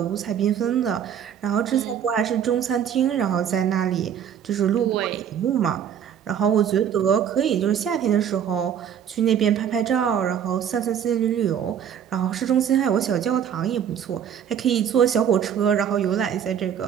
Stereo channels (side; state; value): left; quieter; 8.8 dB